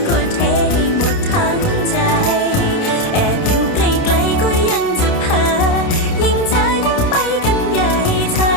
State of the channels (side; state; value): right; late; 29 ms